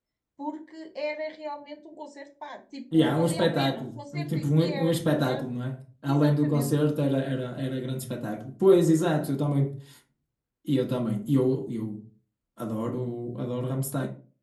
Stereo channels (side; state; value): both; identical; correlation 1.00